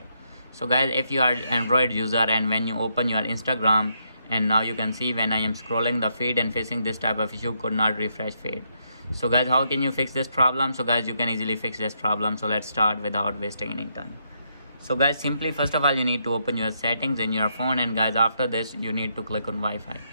So guys, if you are Android user and when you open your Instagram, and now you can see when I am scrolling the feed and facing this type of issue, could not refresh feed. So guys, how can you fix this problem? So guys, you can easily fix this problem. So let's start without wasting any time. So guys, simply first of all you need to open your settings in your phone, and guys after this you need to click on Wi-Fi.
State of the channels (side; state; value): both; inverted; correlation -0.77